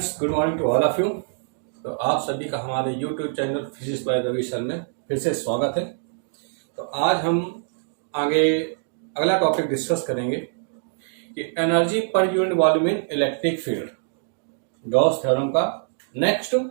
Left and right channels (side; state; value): left; silent; digital silence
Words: good morning to all of you. तो आप सभी का हमारे YouTube channel physics by Ravi sir में फिर से स्वागत है। तो आज हम आगे अगला टॉपिक डिस्कस करेंगे कि एनर्जी पर यूनिट वॉल्यूम इन इलेक्ट्रिक फील्ड, गॉस थ्योरम का नेक्स्ट